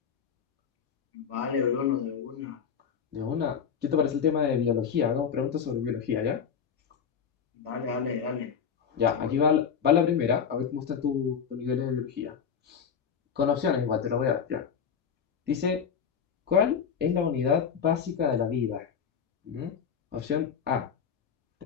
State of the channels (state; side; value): quieter; right; 7.2 dB